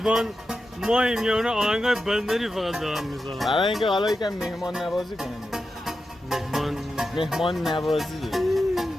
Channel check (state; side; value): normal; both; correlation 0.90